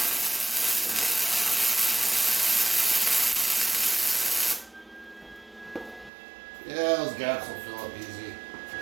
Yeah, those gaps will fill up easy.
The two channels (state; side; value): drops out; left; at 6.1 s